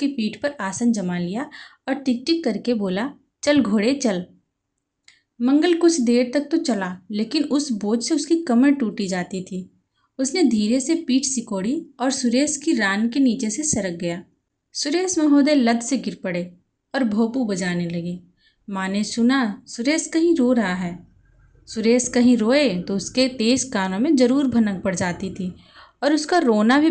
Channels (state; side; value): identical; both; correlation 1.00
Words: पीठ पर आसन जमा लिया और टिक टिक करके बोला, चल घोड़े चल। मंगल कुछ देर तक तो चला, लेकिन उस बोझ से उसकी कमर टूटी जाती थी। उसने धीरे से पीठ सिकोड़ी और सुरेश की रान के नीचे से सरक गया। सुरेश महोदय लद से गिर पड़े और भोंपू बजाने लगे। माँ ने सुना सुरेश कहीं रो रहा है। सुरेश कहीं रोए तो उसके तेज कानों में जरूर भनक पड़ जाती थी और उसका रोना भी